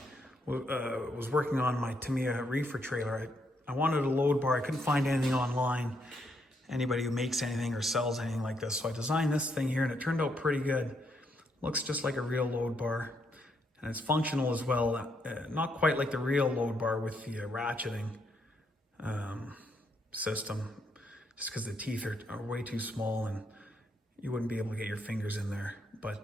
was working on my Tamiya reefer trailer. I wanted a load bar. I couldn't find anything online, anybody who makes anything or sells anything like this. So I designed this thing here and it turned out pretty good. Looks just like a real load bar, and it's functional as well. Not quite like the real load bar with the ratcheting system, just because the teeth are way too small and you wouldn't be able to get your fingers in there.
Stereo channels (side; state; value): both; normal; correlation 0.76